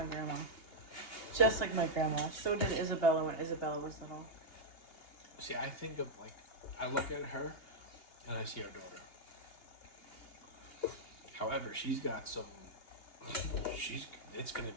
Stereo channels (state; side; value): late; right; 2.8 ms